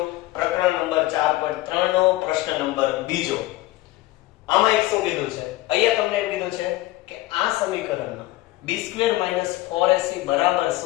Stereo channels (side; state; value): right; quieter; 17.7 dB